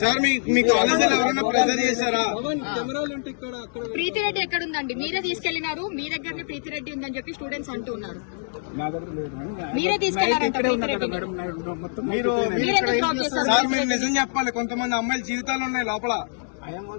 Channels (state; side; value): silent; right; digital silence